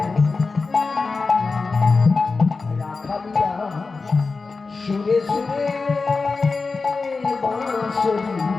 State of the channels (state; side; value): quieter; right; 4.2 dB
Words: রাখালিয়া সুরে সুরে বাঁশরি